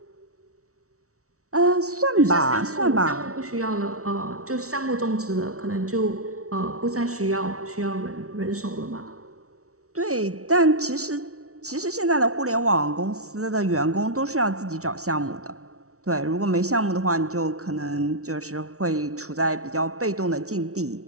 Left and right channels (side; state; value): left; late; 0.64 ms